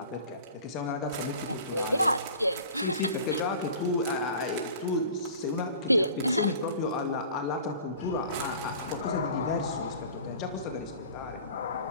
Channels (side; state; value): both; inverted; correlation -0.43